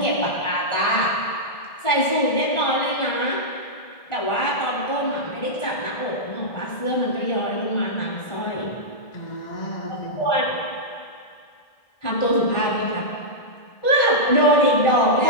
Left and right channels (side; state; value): right; late; 1.6 ms